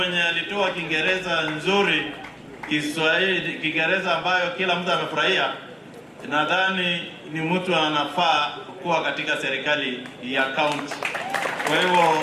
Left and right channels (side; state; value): both; identical; correlation 1.00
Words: alitoa Kiingereza nzuri, Kiswahili, Kiingereza ambayo kila mtu amefurahia, nadhani ni mtu anafaa kuwa katika serikali ya county. Kwa hivyo